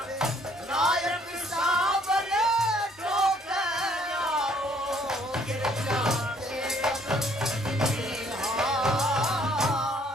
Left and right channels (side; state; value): both; normal; correlation 0.63